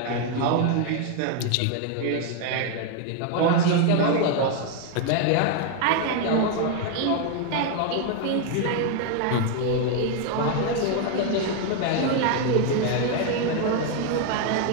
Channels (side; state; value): both; different; correlation 0.01